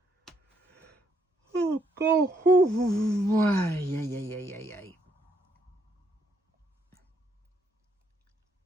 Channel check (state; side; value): normal; both; correlation 0.73